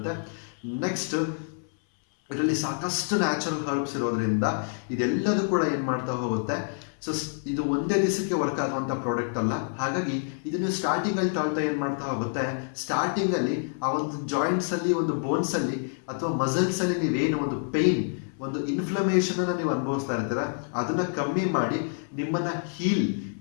ನೆಕ್ಸ್ಟ್ ಇದರಲ್ಲಿ ಸಾಕಷ್ಟು ನ್ಯಾಚುರಲ್ ಹರ್ಬ್ಸ್ ಇರೋದ್ರಿಂದ ಇದೆಲ್ಲದೂ ಕೂಡ ಏನ್ ಮಾಡ್ತಾ ಹೋಗುತ್ತೆ. ಸೊ ಇದು ಒಂದೇ ದಿವಸಕ್ಕೆ ವರ್ಕ್ ಆಗುವಂತ ಪ್ರಾಡಕ್ಟ್ ಅಲ್ಲ. ಹಾಗಾಗಿ ಇದನ್ನು ಸ್ಟಾರ್ಟಿಂಗ್ ಅಲ್ಲಿ ತಾಳ್ತಾ ಏನ್ ಮಾಡ್ತಾ ಹೋಗುತ್ತೆ, ಸ್ಟಾರ್ಟಿಂಗ್ ಅಲ್ಲಿ ಆ ಒಂದು ಜಾಯಿಂಟ್ಸ್ ಅಲ್ಲಿ, ಒಂದು ಬೋನ್ಸ್ ಅಲ್ಲಿ ಅಥವಾ ಮಸಲ್ಸ್ ಅಲ್ಲಿ ನೀವೇನು ಒಂದು ಪೇನ್, ಒಂದು ಇನ್ಫ್ಲಮೇಷನ್ ಅನ್ನ ನೀವು ಅನುಭವಿಸ್ತಾ ಇರ್ತೀರ ಅದನ್ನ ಕಮ್ಮಿ ಮಾಡಿ ನಿಮ್ಮನ್ನ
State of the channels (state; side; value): silent; right; 60 dB below the other